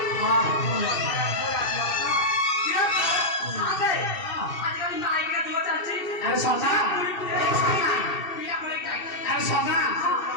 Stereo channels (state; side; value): late; right; 2.7 ms